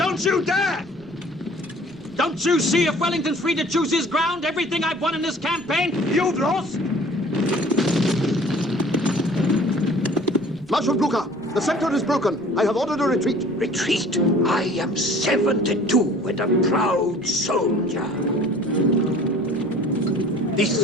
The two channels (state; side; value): noise; right; rumble, 25 dB below the sound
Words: you dare! Don't you see if Wellington's free to choose his ground, everything I've won in this campaign, you've lost? Marshal Blucher, the center is broken. I have ordered a retreat. Retreat? I am 72 and a proud soldier.